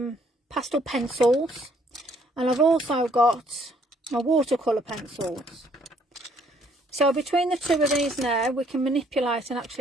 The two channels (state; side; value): normal; both; correlation 0.65